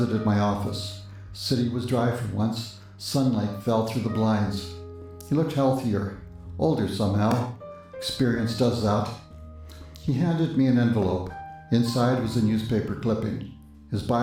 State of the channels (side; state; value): both; identical; correlation 1.00